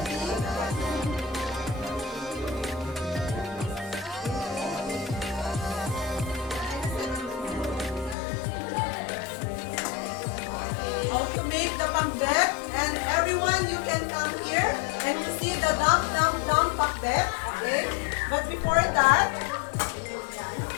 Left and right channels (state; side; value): drops out; right; at 8.2 s